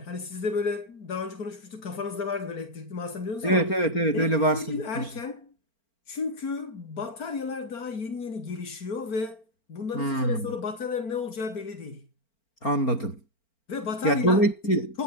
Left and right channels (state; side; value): late; right; 4.4 ms